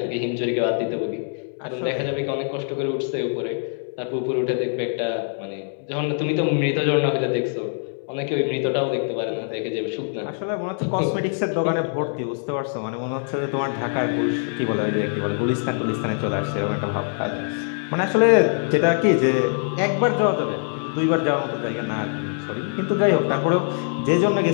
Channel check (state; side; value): silent; right; digital silence